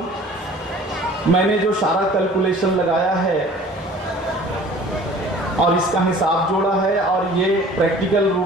मैंने जो सारा कैलकुलेशन लगाया है और इसका हिसाब जोड़ा है, और ये प्रैक्टिकल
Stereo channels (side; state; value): both; normal; correlation 0.47